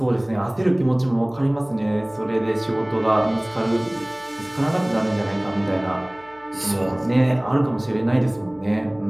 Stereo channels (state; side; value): noise; right; hum, 28 dB below the sound